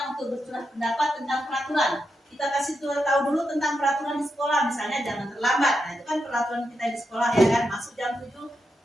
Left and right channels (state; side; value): normal; both; correlation 0.85